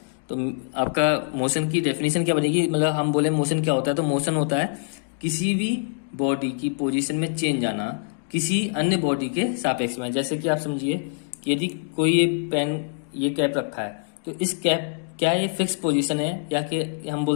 तो आपका मोशन की डेफिनेशन क्या बनेगी? मतलब हम बोले मोशन क्या होता है, तो मोशन होता है किसी भी बॉडी की पोजीशन में चेंज आना किसी अन्य बॉडी के सापेक्ष में। जैसे कि आप समझिए कि यदि कोई ये पेन, ये कैप रखा है, तो इस कैप, क्या ये फिक्स पोजीशन है या कि हम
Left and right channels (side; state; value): right; silent; digital silence